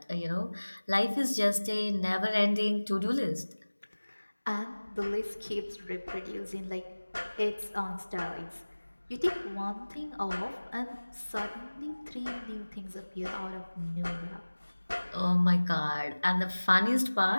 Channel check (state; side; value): inverted; both; correlation -1.00